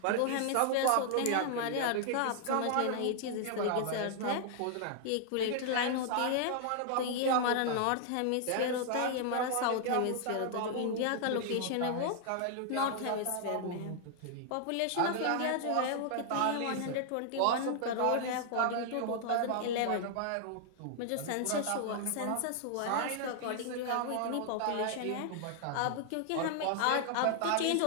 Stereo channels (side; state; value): both; different; correlation 0.00